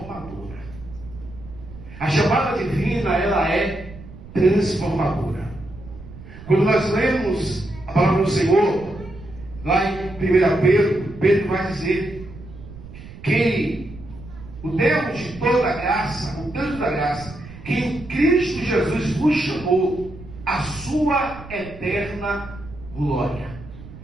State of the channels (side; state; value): right; noise; rumble, 16 dB below the sound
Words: A chamada divina, ela é transformadora. Quando nós lemos a palavra do Senhor, lá em 1 Pedro, Pedro vai dizer que o Deus de toda graça, o Deus da graça, que em Cristo Jesus vos chamou a sua eterna glória.